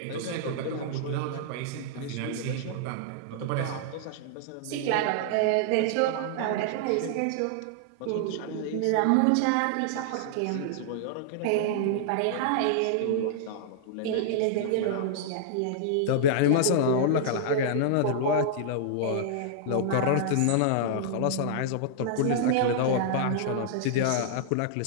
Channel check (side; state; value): both; different; correlation -0.01